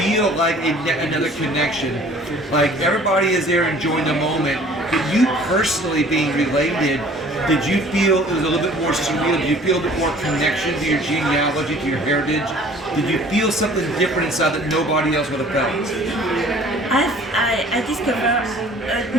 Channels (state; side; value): normal; both; correlation 0.51